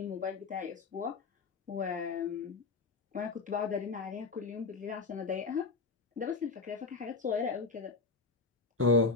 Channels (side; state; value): right; quieter; 4.2 dB